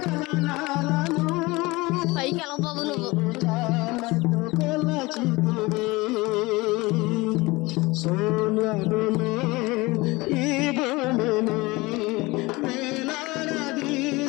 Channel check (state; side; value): quieter; right; 22.4 dB